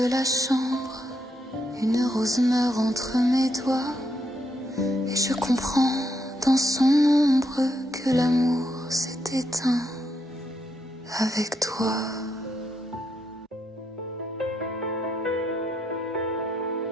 la chambre, une rose meurt entre mes doigts, et je comprends dans son ombre que l'amour s'est éteint avec toi.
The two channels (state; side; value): normal; both; correlation 0.79